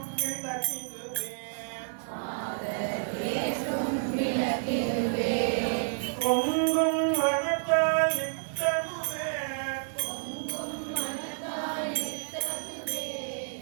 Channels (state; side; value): silent; left; digital silence